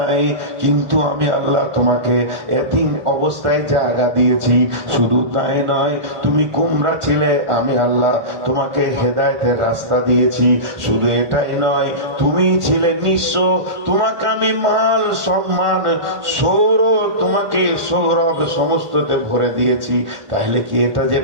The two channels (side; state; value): left; late; 1.5 ms